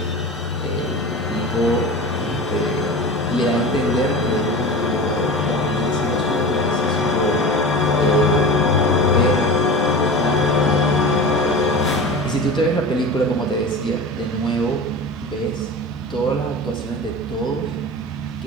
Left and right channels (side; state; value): both; normal; correlation 0.32